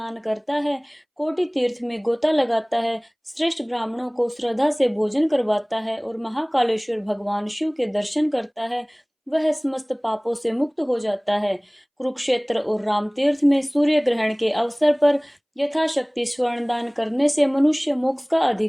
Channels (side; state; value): both; identical; correlation 1.00